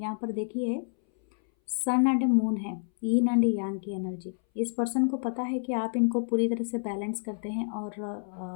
पर देखिए सन एंड मून है, यीन एंड यांग की एनर्जी। इस पर्सन को पता है कि आप इनको पूरी तरह से बैलेंस करते हैं और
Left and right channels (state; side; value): silent; right; 59 dB below the other